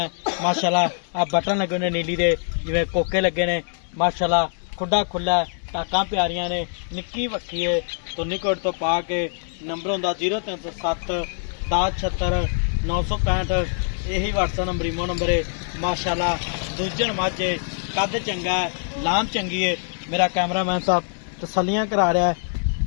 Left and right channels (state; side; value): silent; right; digital silence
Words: माशाल्लाह। आ बटन लगे ने नीली दे जिवें कोके लगे ने माशाल्लाह। खुड्डा खुला है, टाकां प्यारियां ने, निक्की वक्की है। तो निकट तो पा के नंबर होंदा 0307 1076 965। यही व्हाट्सएप नंबर इमो नंबर है माशाल्लाह। दूजन मझ कद चंगा है, लाम चंगी है। मेरा कैमरामैन साहब तसल्लियां करा रहा है